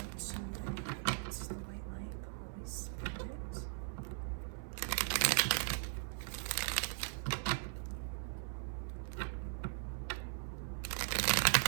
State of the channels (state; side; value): silent; left; 51 dB below the other